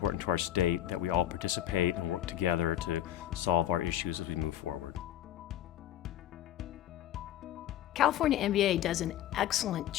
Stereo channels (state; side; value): quieter; right; 12.4 dB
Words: to our state that we all participate and work together to solve our issues as we move forward. California MBA does an excellent